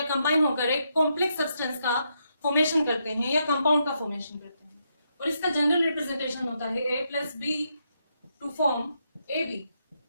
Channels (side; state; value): both; inverted; correlation -0.80